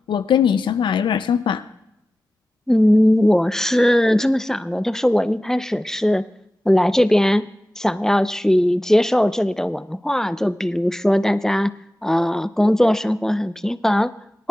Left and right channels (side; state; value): both; normal; correlation 0.95